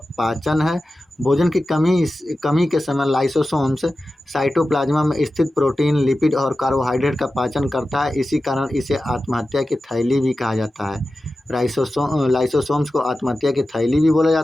पाचन है। भोजन की कमी के समय लाइसोसोम्स साइटोप्लाज्मा में स्थित प्रोटीन, लिपिड और कार्बोहाइड्रेट का पाचन करता है। इसी कारण इसे आत्महत्या की थैली भी कहा जाता है। लाइसोसोम्स को आत्महत्या की थैली भी बोला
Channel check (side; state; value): both; normal; correlation 0.94